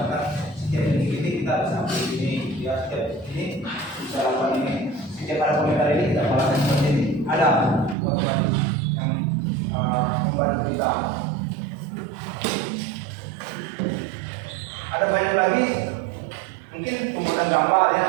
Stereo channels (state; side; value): drops out; left; at 8.0 s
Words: setiap ini kita bisa ambil ini, ya setiap ini bisa lakukan ini. Setiap ada komentar ini kita melakukan seperti ini. Ada otomatis yang membantu kita. Ada banyak lagi, mungkin pembuatan gambar yang